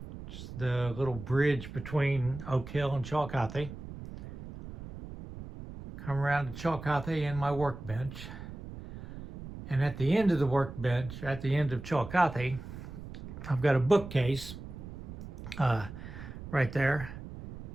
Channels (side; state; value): right; noise; rumble, 12 dB below the sound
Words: just the little bridge between Oak Hill and Chillicothe. Come around to Chillicothe and my workbench. And at the end of the workbench, at the end of Chillicothe, I've got a bookcase right there.